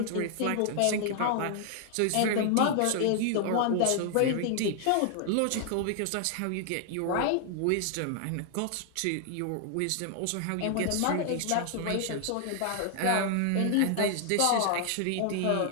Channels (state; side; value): different; both; correlation 0.00